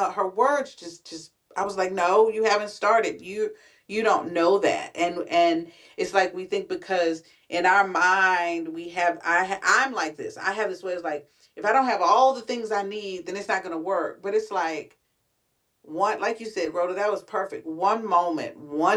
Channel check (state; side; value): identical; both; correlation 1.00